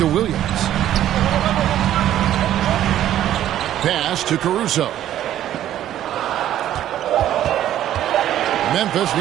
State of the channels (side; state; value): left; quieter; 12.0 dB